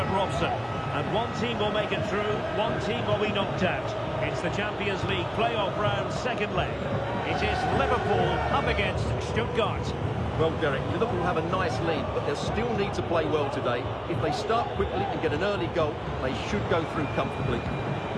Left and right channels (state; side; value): identical; both; correlation 1.00